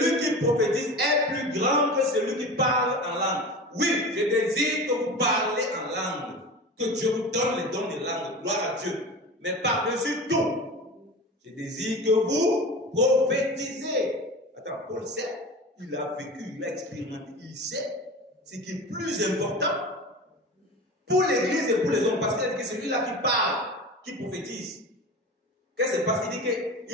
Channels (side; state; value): both; normal; correlation 0.32